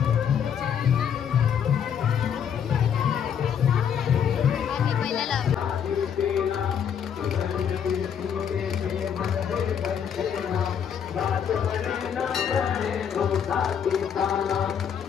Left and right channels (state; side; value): quieter; right; 8.1 dB